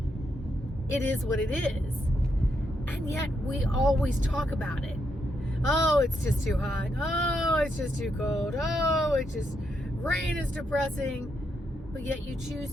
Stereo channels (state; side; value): normal; both; correlation 0.80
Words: It is what it is. And yet we always talk about it. Oh, it's just too hot. Oh, it's just too cold. Oh, it's just, rain is depressing. But yet you